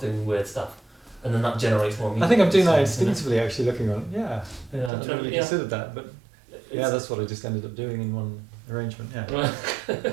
doing weird stuff, and then that generates more music. I think I'm doing that instinctively, actually, looking on. Yeah, I Yeah, hadn't really considered that, but yeah, that's what I just ended up doing in one arrangement. Yeah, Right.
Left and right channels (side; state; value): left; drops out; at 4.9 s